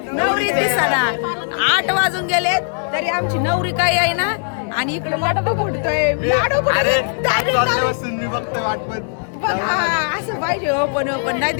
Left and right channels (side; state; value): right; silent; digital silence